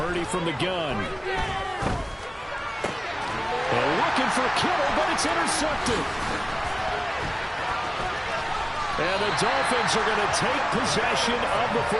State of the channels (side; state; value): both; identical; correlation 1.00